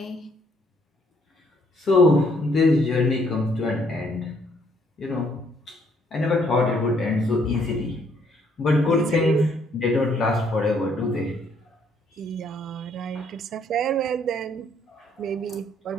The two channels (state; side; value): normal; both; correlation 0.67